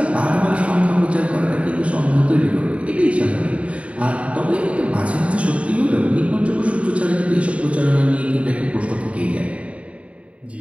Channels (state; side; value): late; left; 0.064 ms